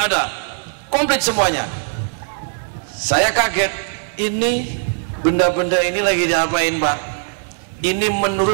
komplit semuanya. Saya kaget, ini benda-benda ini lagi diapain Pak? Ini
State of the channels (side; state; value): left; silent; digital silence